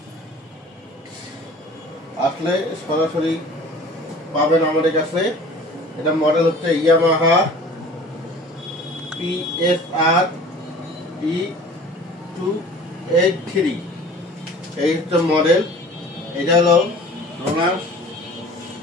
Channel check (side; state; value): both; normal; correlation 0.45